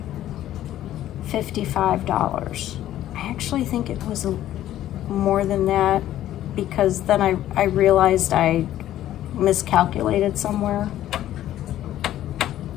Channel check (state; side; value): quieter; right; 12.9 dB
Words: $55. I actually think it was more than that, because then I realized I miscalculated somewhere.